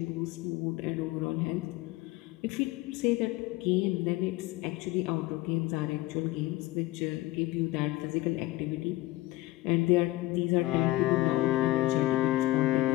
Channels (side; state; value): right; quieter; 18.1 dB